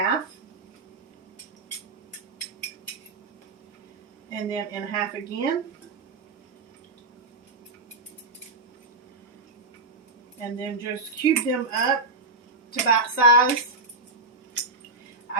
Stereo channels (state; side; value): quieter; left; 3.1 dB